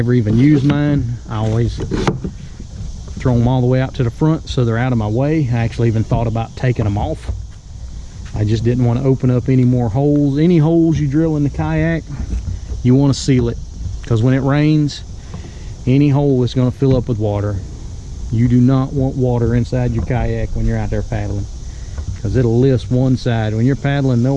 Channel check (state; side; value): identical; both; correlation 1.00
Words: even use mine. I always throw them all the way out to the front so they're out of my way. I actually even thought about taking them off. I just didn't want to open up any more holes. Any holes you drill in the kayak, you want to seal it, because when it rains, any hole is going to fill up with water. You do not want water inside your kayak when you're out there paddling, because it'll lift one side. When you're paddling,